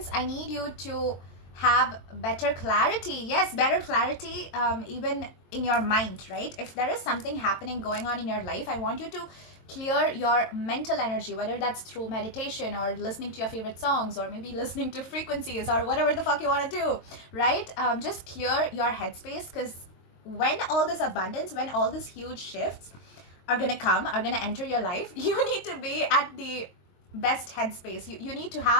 I need you to have better clarity. Yes, better clarity, even in your mind, right? If there is something happening going on in your life, I want you to clear your mental energy, whether that's through meditation or listening to your favorite songs or maybe listening to frequencies or whatever the fuck you want to do, right? Just clear your headspace, because when all this abundance, when all these huge shifts are gonna come, are gonna enter your life, you need to be at the best headspace. You need to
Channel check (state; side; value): late; right; 22 ms